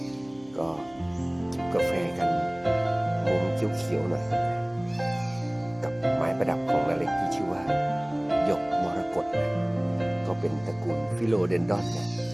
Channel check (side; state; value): right; noise; hum, 29 dB below the sound